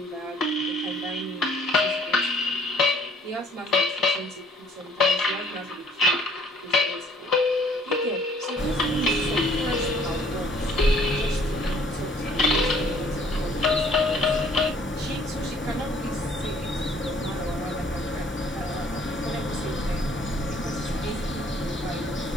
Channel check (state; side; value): normal; both; correlation 0.59